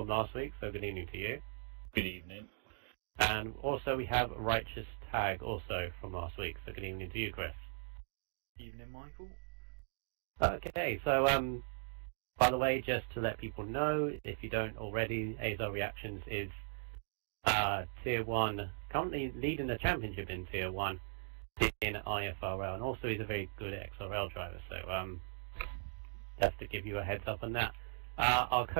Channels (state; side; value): silent; left; digital silence